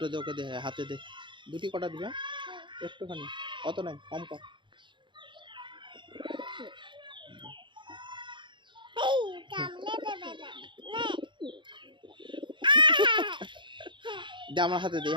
দে, ওকে দে, হাতে দে। দুটি কটা দিবে, একটুখানি, অত নাই, কম কর। দে আমার হাতে দে,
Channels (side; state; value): left; late; 0.23 ms